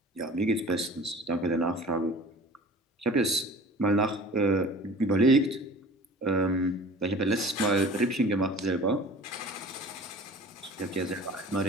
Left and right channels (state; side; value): normal; both; correlation 0.44